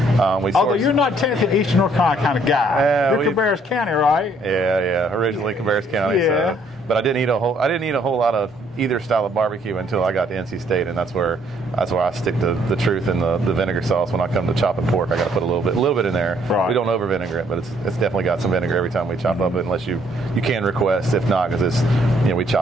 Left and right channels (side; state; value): both; normal; correlation 0.66